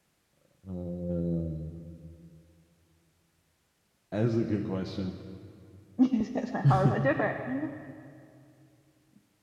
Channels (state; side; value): identical; both; correlation 1.00